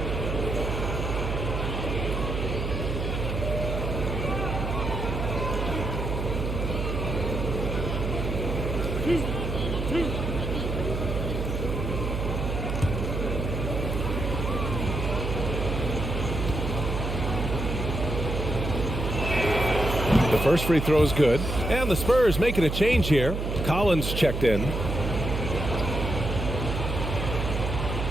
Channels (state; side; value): noise; right; hum, 2 dB below the sound